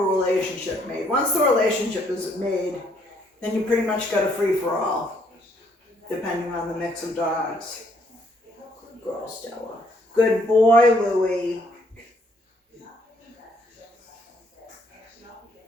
relationship made. Once the relationship is made, then you pretty much got a free-for-all, depending on the mix of dogs. Good girl, Stella. Good boy, Louie.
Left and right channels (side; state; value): both; normal; correlation 0.68